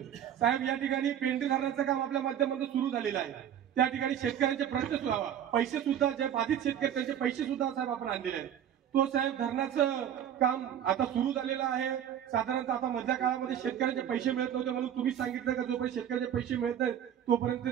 साहेब या ठिकाणी पेंढी धरणाचं काम आपल्या माध्यमातून सुरू झालेलं आहे। त्या ठिकाणी शेतकऱ्यांचे प्रश्न सुद्धा पैसे सुद्धा जे बाधित शेतकरी त्यांचे पैसे सुद्धा साहेब आपण आणलेले आहेत। तो साहेब धरणाचं काम आता सुरू झालेलं आहे। साधारणतः आता मधल्या काळामध्ये शेतकऱ्यांचे पैसे मिळत नव्हते म्हणून तुम्ही सांगितलं का जोपर्यंत शेतकऱ्यांचे पैसे मिळत नाहीत तोपर्यंत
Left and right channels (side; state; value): left; quieter; 9.9 dB